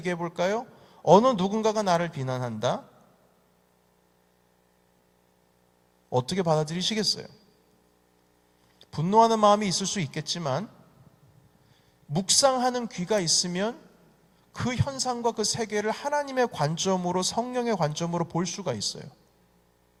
볼까요? 어느 누군가가 나를 비난한다? 어떻게 받아들이시겠어요? 분노하는 마음이 있을 수 있겠지만 묵상하는 귀가 있으면 그 현상과 그 세계를 하나님의 관점으로, 성령의 관점으로 볼 수가 있어요.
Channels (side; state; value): both; identical; correlation 1.00